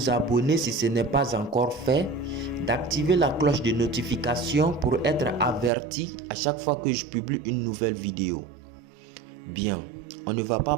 abonner si ce n'est pas encore fait, d'activer la cloche de notification pour être averti à chaque fois que je publie une nouvelle vidéo. Bien, on ne va pas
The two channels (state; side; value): drops out; left; at 5.7 s